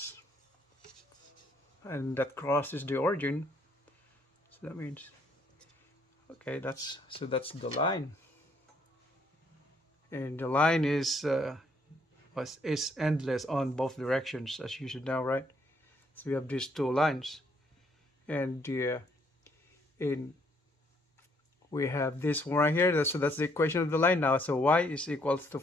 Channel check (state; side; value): normal; both; correlation 0.69